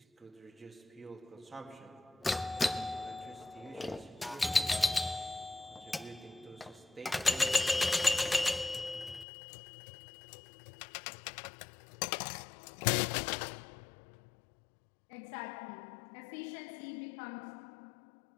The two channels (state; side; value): drops out; right; at 9.2 s